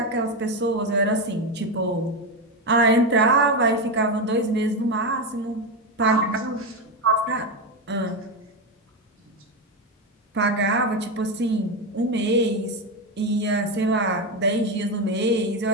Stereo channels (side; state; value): both; normal; correlation 0.12